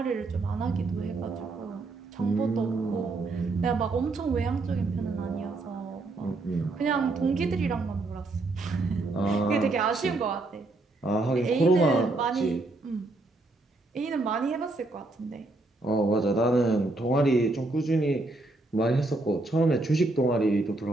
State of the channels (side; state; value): left; quieter; 3.1 dB